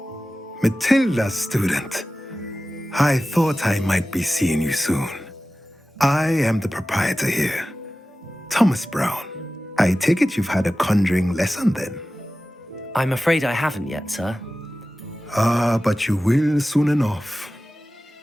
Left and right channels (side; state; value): both; normal; correlation 0.96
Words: Matilda's student. I thought I might be seeing you soon. I am the proprietor here, Thomas Brown. I take it you've had a conjuring lesson then? I'm afraid I haven't yet, sir. Ah, but you will soon enough.